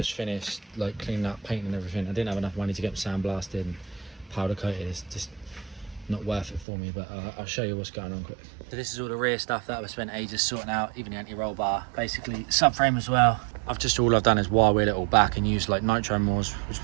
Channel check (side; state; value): left; drops out; at 6.7 s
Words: finished, like cleaning up, painting and everything. I didn't have enough money to get them sandblasted and powder coated. It's just not worth it for me, but I'll show you what's going on quick. So this is all the rear stuff that I've spent ages sorting out, even the anti-roll bar, basically subframe as well. All I've done is wire wheel it all back and use like nitro Moors, which